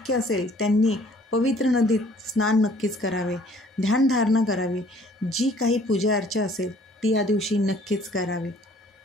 असेल त्यांनी पवित्र नदीत स्नान नक्कीच करावे, ध्यानधारणा करावी, जी काही पूजा अर्चा असेल ती या दिवशी नक्कीच करावी.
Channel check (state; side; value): normal; both; correlation 0.57